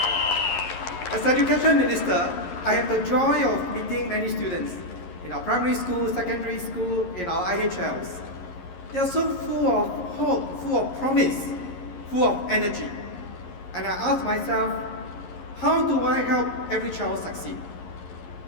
As Education Minister, I have the joy of meeting many students in our primary school, secondary school, in our IHLs. They are so full of hope, full of promise, full of energy. And I ask myself, how do I help every child succeed?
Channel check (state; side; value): late; right; 11 ms